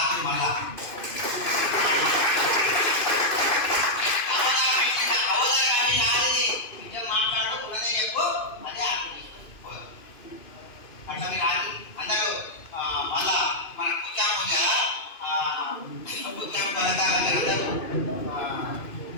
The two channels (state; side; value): late; right; 2.5 ms